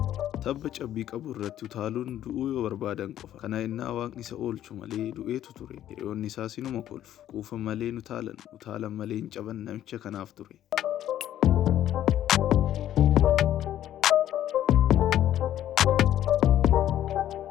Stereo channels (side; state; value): right; quieter; 11.9 dB